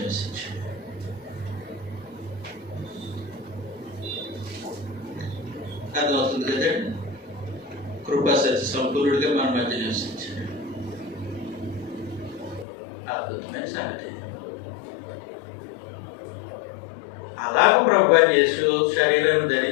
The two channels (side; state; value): right; drops out; at 12.7 s